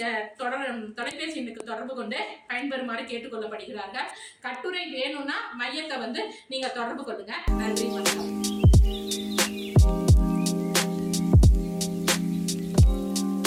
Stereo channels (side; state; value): both; identical; correlation 1.00